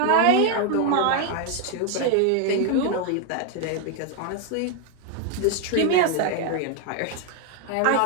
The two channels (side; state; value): both; different; correlation 0.00